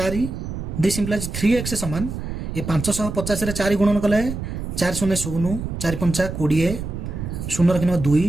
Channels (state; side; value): noise; right; rumble, 6 dB below the sound